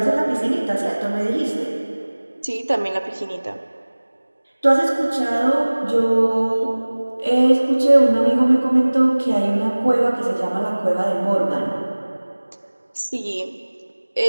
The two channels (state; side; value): inverted; both; correlation -1.00